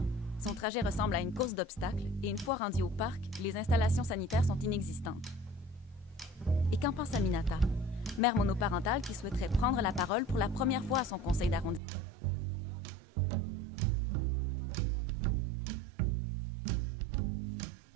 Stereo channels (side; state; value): left; drops out; at 11.8 s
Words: Son trajet ressemble à une course d'obstacles et une fois rendu au parc, les installations sanitaires sont inexistantes. Et qu'en pense Aminata, mère monoparentale qui souhaiterait prendre la parole pour la première fois à son conseil d'arrondissement? Elle a finalement trouvé le courage pour le faire, mais pas les sous pour payer la gardienne.